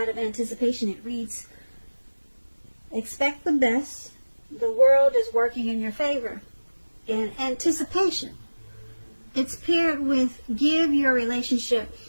of anticipation, it reads, expect the best. The world is working in your favor. In anticipation, it's paired with give your relationship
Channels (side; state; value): both; inverted; correlation -1.00